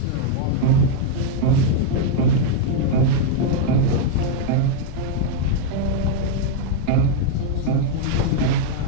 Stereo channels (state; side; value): different; both; correlation -0.01